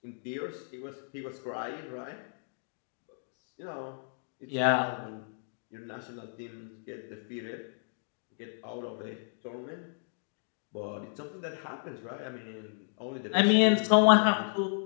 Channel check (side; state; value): right; silent; digital silence